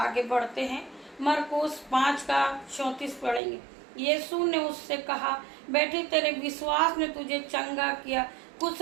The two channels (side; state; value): left; drops out; at 3.4 s